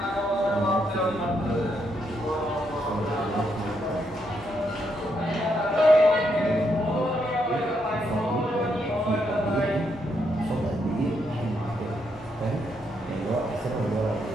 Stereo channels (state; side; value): normal; both; correlation 0.78